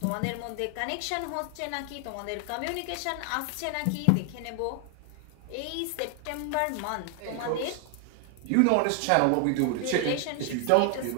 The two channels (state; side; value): different; both; correlation 0.00